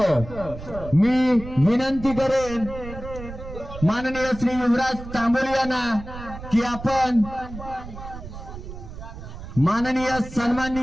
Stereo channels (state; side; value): noise; right; rumble, 12 dB below the sound